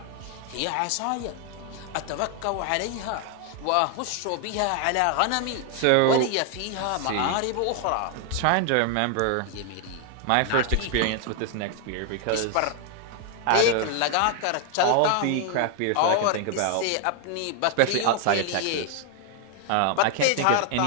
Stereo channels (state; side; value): different; both; correlation 0.00